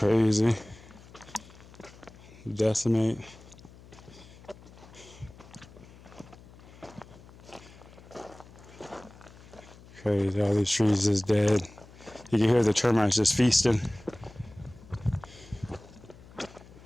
Decimate. Crazy. All these trees is dead. You can hear the termites just feasting.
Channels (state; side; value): noise; left; hum, 21 dB below the sound